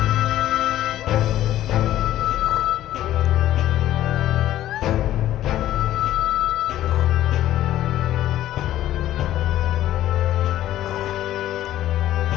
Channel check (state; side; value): quieter; right; 13.3 dB